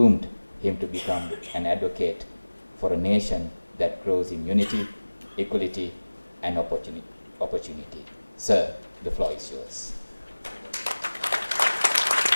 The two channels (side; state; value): both; inverted; correlation -1.00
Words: him to become an advocate for a nation that grows in unity, equality, and opportunity. Sir, the floor is yours.